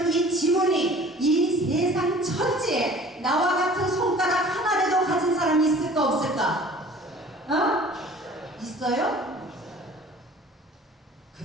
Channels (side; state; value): both; normal; correlation 0.47